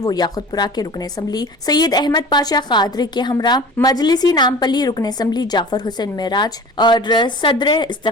याकुतपुरा के रुकन असम्बली सैयद अहमद पाशा कादरी के हमरा मजलिसी नामपली रुकन असम्बली जाफर हुसैन मेराज और सदर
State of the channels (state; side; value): normal; both; correlation 0.39